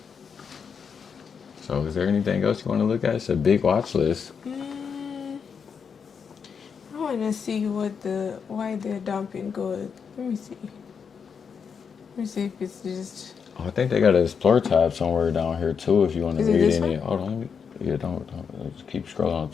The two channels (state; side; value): quieter; right; 6.4 dB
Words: So is there anything else you want to look at? It's a big watch list. I want to see why they're dumping gold. Let me see. Let me see if it's just... Oh, I think they got an Explore tab somewhere down here too if you want to read this any. one? Hold on. Yeah, don't just keep scrolling